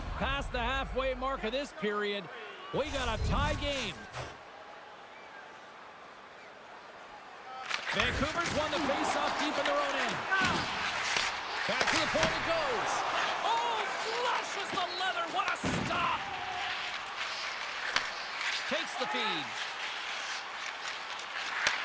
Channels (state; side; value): identical; both; correlation 1.00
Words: Past the halfway mark of this period, we got a tie game. Vancouver's won the face-off deep in their own end. Back to the point it goes. Oh, flushes the leather. What a stop. Takes the feed.